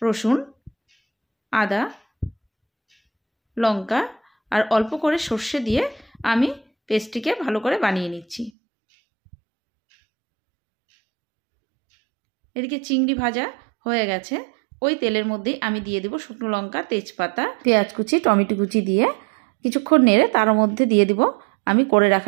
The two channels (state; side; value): drops out; left; at 8.5 s